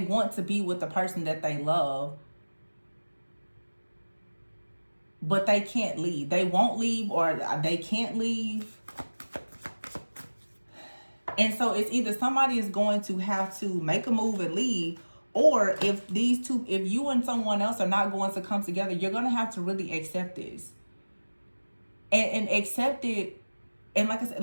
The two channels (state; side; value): inverted; both; correlation -1.00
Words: to be with the person that they love, but they can't leave. They won't leave or they can't leave. And so it's either somebody is going to have to make a move and leave, or if you and someone else are not going to come together, you're going to have to really accept this. And accept it. And like I